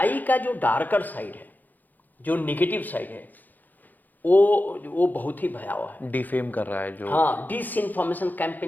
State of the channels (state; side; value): late; right; 0.084 ms